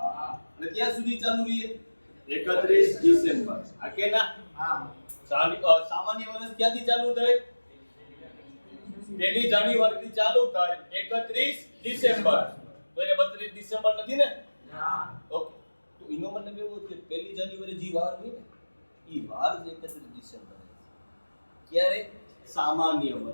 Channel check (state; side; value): inverted; both; correlation -1.00